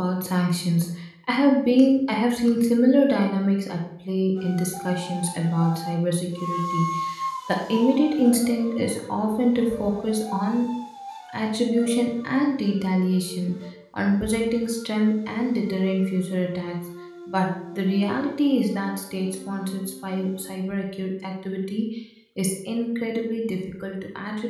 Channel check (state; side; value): identical; both; correlation 1.00